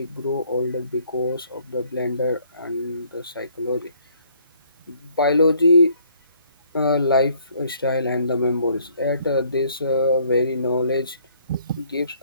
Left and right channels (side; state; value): both; inverted; correlation -0.63